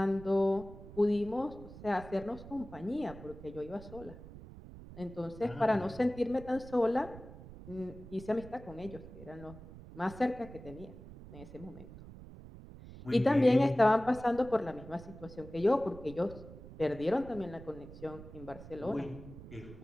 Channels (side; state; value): right; noise; rumble, 15 dB below the sound